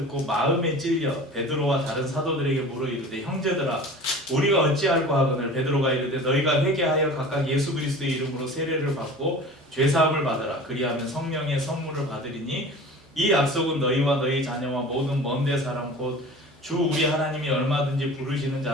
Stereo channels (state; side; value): normal; both; correlation 0.39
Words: 마음에 찔려 베드로와 다른 사도들에게 물어 이르되, 형제들아, 우리가 어찌할까 하거늘. 베드로가 이르되, 너희가 회개하여 각각 예수 그리스도의 이름으로 세례를 받고 죄사함을 받으라. 그리하면 성령의 선물을 받으리니 이 약속은 너희와 너희 자녀와 모든 먼데 사람 곧 주 우리 하나님이 얼마든지 부르시는